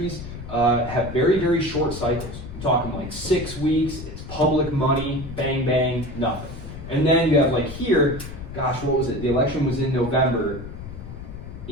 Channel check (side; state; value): left; noise; rumble, 11 dB below the sound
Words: have very, very short cycles. I'm talking like 6 weeks, it's public money, bang, bang, nothing. And then you have like here, gosh, what was it? The election was in November.